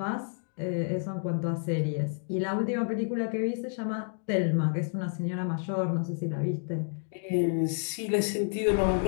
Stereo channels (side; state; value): right; silent; digital silence